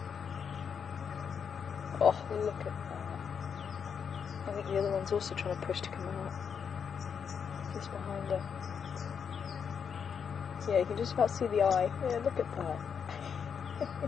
Oh, look at that. I think the other one's also trying to push to come out. Just behind her. Yeah, you can just about see the eye. Yeah, look at that.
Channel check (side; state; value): right; quieter; 6.9 dB